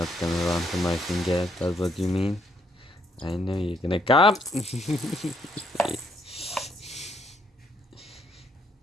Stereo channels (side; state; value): both; normal; correlation 0.72